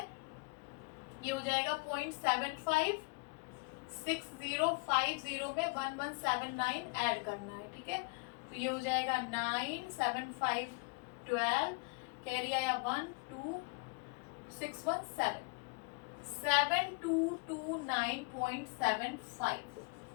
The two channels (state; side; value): quieter; right; 32.1 dB